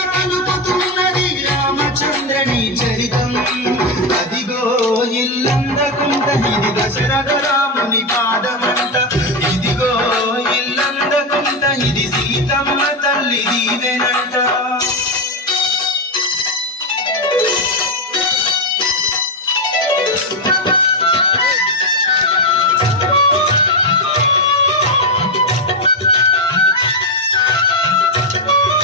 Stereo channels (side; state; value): both; normal; correlation 0.07